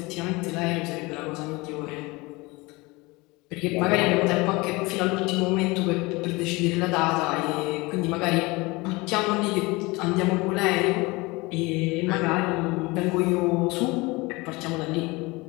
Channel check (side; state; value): right; quieter; 23.7 dB